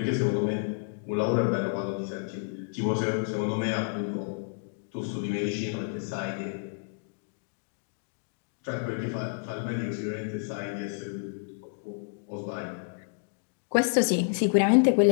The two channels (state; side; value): silent; right; digital silence